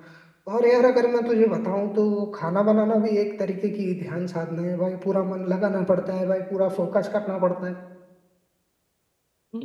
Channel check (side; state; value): both; identical; correlation 1.00